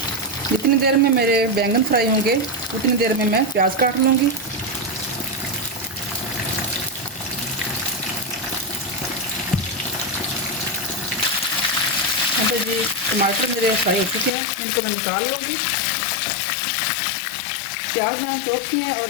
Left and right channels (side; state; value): right; drops out; at 14.3 s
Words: जितनी देर में मेरे बैंगन फ्राई होंगे उतनी देर में मैं प्याज काट लूँगी। यहाँ पे जी टमाटर मेरे फ्राई हो चुके हैं, इनको मैं निकाल लूँगी। प्याज मैंने चॉप किए हैं और